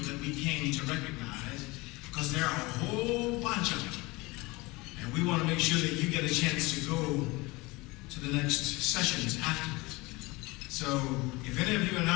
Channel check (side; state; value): right; quieter; 23.4 dB